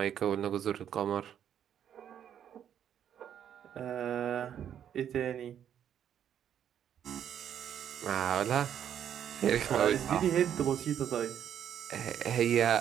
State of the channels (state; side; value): quieter; left; 9.5 dB